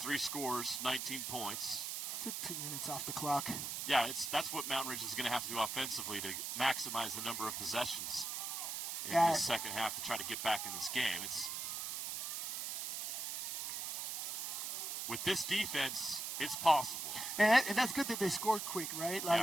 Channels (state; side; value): noise; right; hiss, 3 dB below the sound